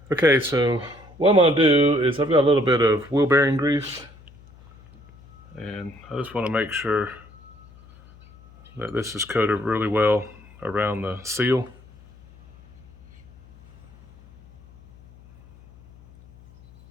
Okay, so what I'm going to do is I've got a little bit of wheel bearing grease, and I just want to make sure that this is coated really well around the seal.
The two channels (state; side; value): noise; left; hum, 24 dB below the sound